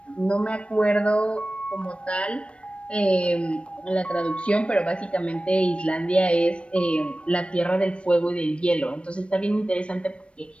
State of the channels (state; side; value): late; right; 0.060 ms